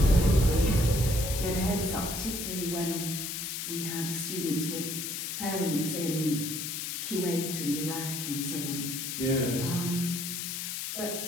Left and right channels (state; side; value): noise; left; hiss, 4 dB below the sound